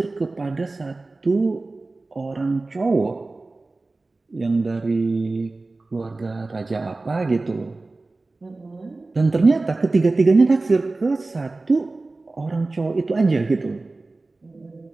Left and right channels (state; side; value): quieter; left; 3.3 dB